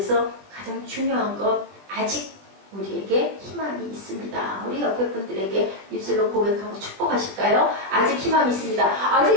가장 중요한 것 아직 우리에게 희망이 있습니다. 우리 옆에 분들에게 입술로 고백하고 축복하실까요? 아직 희망이 있습니다.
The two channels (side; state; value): left; late; 20 ms